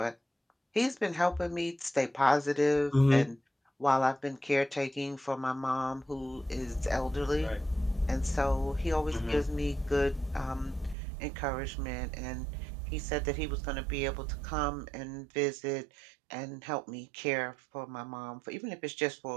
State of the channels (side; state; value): left; drops out; at 11.0 s